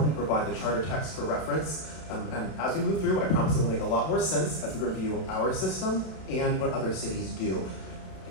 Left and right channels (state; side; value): late; right; 32 ms